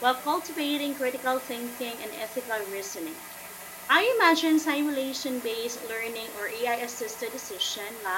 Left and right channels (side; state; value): both; identical; correlation 1.00